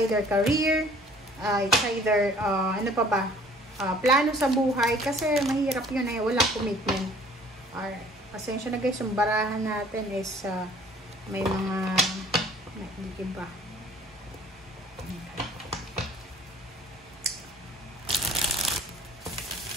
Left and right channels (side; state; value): both; normal; correlation 0.53